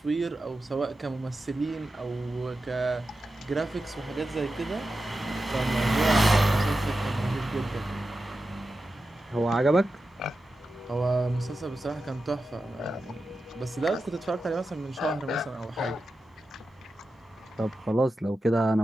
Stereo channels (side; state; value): both; normal; correlation 0.91